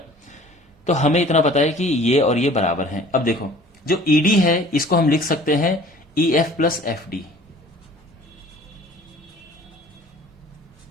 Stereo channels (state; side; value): normal; both; correlation 0.49